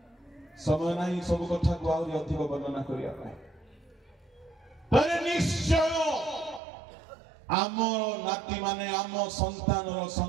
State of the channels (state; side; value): drops out; left; at 6.6 s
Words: समय नहीं सब कथा को आउरी अधिक वर्णना करिया पाए तरे निश्चय आम नाती माने आम